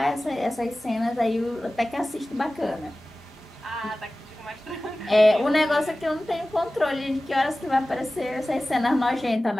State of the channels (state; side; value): normal; both; correlation 0.96